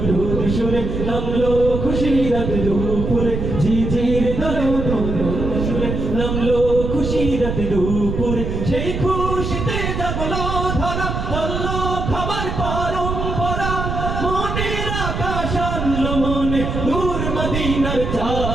সুরে নামলো খুশির রাত দুপুরে ঝিঝির দলে দুরুদ সুরে নামলো খুশির রাত দুপুরে সেই খুশিতে জাগলো ধরা চললো খাবার পরম্পরা মনের আকাশ আনলো মনে দূর মদিনার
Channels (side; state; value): right; noise; rumble, 3 dB below the sound